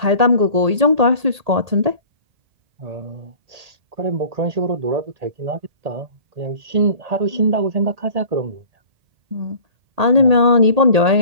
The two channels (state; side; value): late; left; 1.8 ms